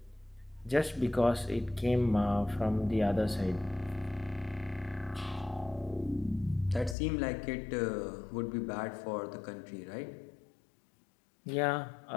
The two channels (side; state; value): right; drops out; at 7.0 s